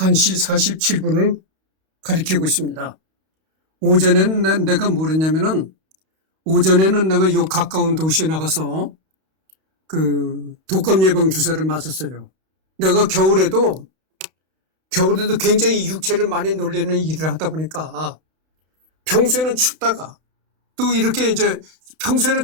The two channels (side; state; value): left; late; 32 ms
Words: 47분을 가리키고 있습니다. 오전에는 내가 뭘 했냐면은, 오전에는 내가 요 가까운 도시에 나가서 독감 예방 주사를 맞았어요. 내가 겨울에도 굉장히 육체를 많이 놀리는 일을 하다 보니까 평소에는 춥다가 또 이렇게 이제 평소에는